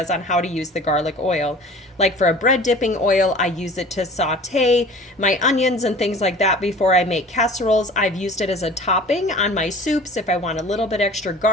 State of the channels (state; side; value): normal; both; correlation 0.43